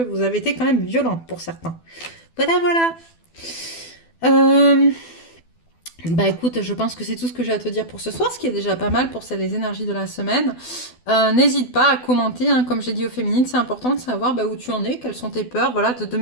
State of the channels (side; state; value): right; late; 12 ms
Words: avez été quand même violent pour certains. Voilà, voilà. Euh, Bah écoute, je pense que c'est tout ce que j'ai à te dire pour ce soir, ce qui est déjà pas mal pour les énergies de la semaine. N'hésite pas à commenter, hein, comme j'ai dit aux féminines, c'est important de savoir où tu en es, quelles sont tes peurs, voilà, de